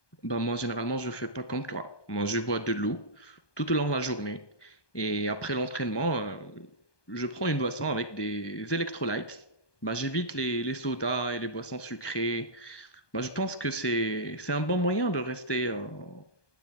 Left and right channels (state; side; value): late; right; 1.2 ms